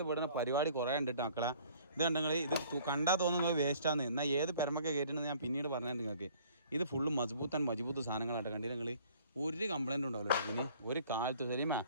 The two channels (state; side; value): inverted; both; correlation -0.55